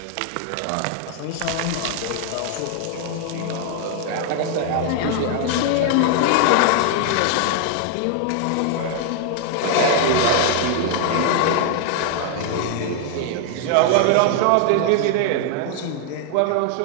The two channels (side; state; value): both; different; correlation 0.00